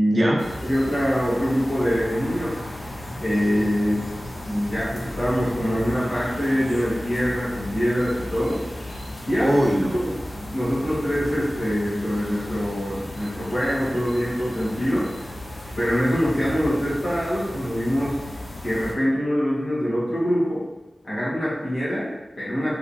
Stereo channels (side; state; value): both; normal; correlation 0.96